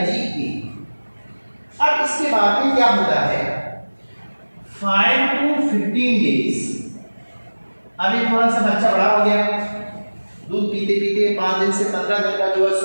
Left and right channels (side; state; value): both; inverted; correlation -1.00